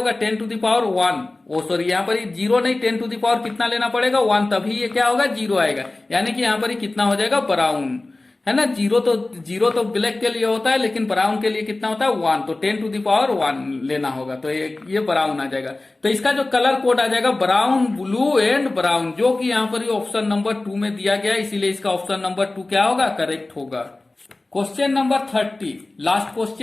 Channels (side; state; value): right; quieter; 3.0 dB